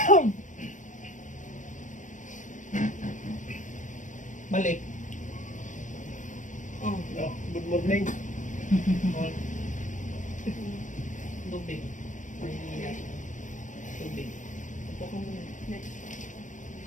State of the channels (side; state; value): right; late; 0.37 ms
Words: Balik. Oh, Oh, good morning. oh. Tubig. Mahihiya. Tubig. Upo ka muna.